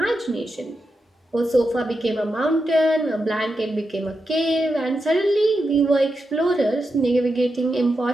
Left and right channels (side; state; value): both; normal; correlation 0.87